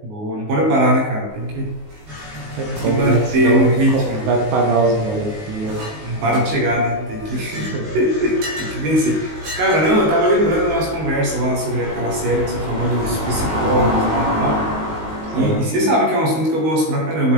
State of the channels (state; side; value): late; left; 19 ms